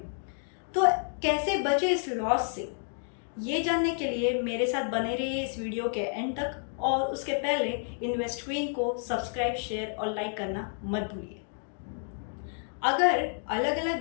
तो कैसे बचे इस लॉस से? ये जानने के लिए मेरे साथ बने रहिए इस वीडियो के एंड तक, और उसके पहले इन्वेस्ट क्वीन को सब्सक्राइब, शेयर और लाइक करना मत भूलिए। अगर अलग अलग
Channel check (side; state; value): right; silent; 58 dB below the other